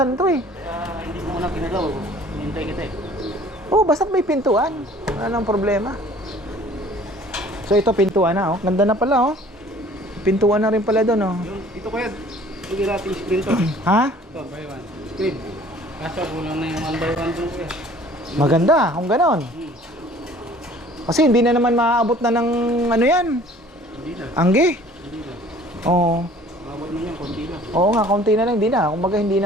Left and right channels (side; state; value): both; normal; correlation 0.51